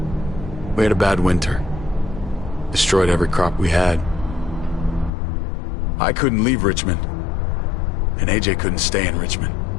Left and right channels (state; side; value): drops out; right; at 5.1 s